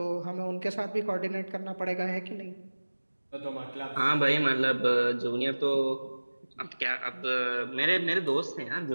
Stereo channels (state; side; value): inverted; both; correlation -1.00